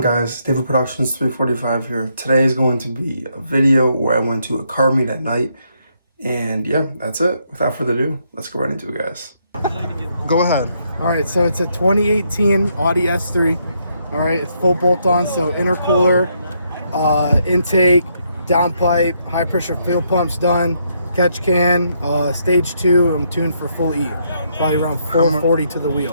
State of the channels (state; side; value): inverted; both; correlation -0.75